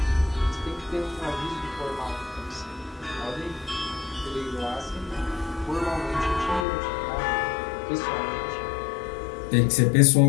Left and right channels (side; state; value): right; drops out; at 6.7 s